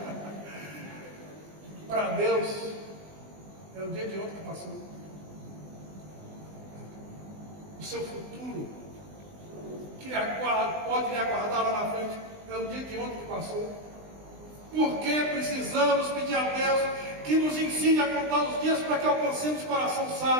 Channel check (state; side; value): late; left; 20 ms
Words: Para Deus, é o dia de ontem que passou. O seu futuro, que pode lhe aguardar lá na frente, é o dia de ontem que passou. Por que precisamos pedir a Deus que nos ensine a contar os dias para que alcancemos o coração